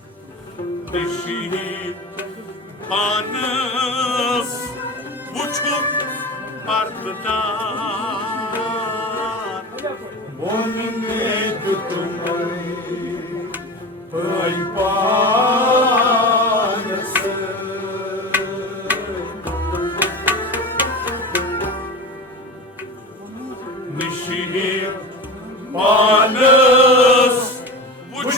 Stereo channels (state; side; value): normal; both; correlation 0.29